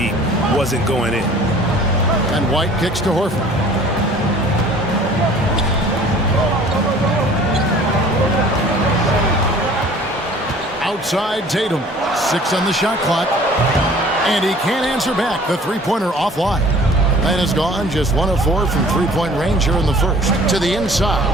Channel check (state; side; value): normal; both; correlation 0.49